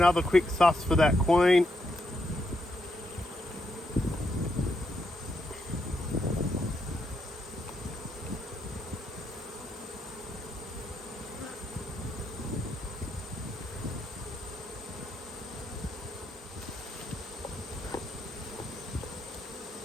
quick suss for that queen.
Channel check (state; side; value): normal; both; correlation 0.79